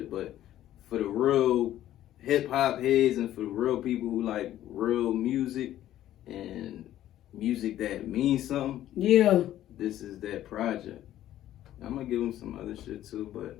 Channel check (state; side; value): quieter; right; 12.9 dB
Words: but for the real hip-hop heads and for the real people who like real music and music that means something, this is that project. I'm gonna give them some other shit too, but